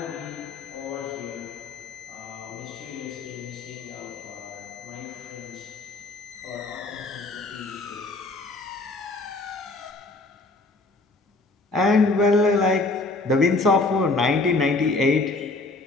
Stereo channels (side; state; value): right; quieter; 3.2 dB